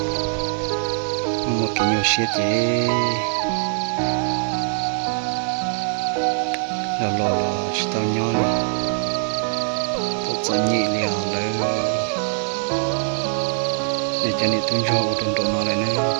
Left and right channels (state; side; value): silent; left; digital silence